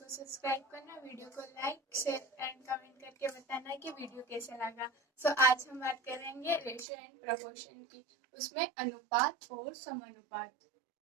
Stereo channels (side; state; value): left; drops out; at 6.9 s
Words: सब्सक्राइब करना, वीडियो को लाइक शेयर एंड कमेंट करके बताना कि वीडियो कैसा लगा। आज हम बात करेंगे रेशियो एंड प्रोपोर्शन की, उसमें अनुपात और समानुपात।